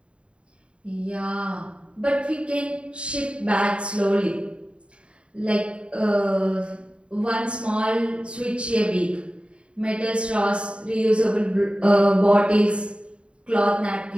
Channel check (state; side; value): late; left; 0.058 ms